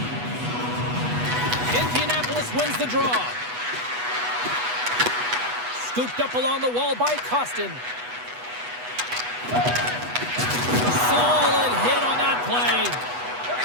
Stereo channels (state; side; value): late; left; 8.1 ms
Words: Indianapolis wins the draw. Scooped up along the wall by Costin. Solid hit on that play.